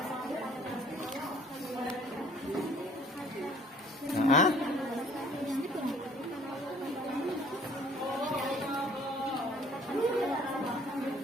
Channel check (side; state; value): both; normal; correlation 0.56